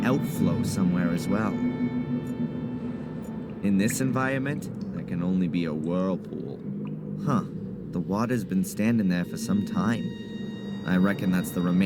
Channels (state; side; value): identical; both; correlation 1.00